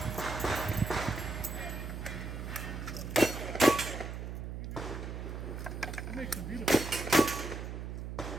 It makes them beautiful.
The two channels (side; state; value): right; noise; hum, 6 dB below the sound